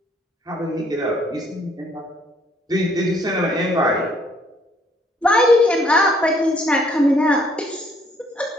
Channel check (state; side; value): normal; both; correlation 0.65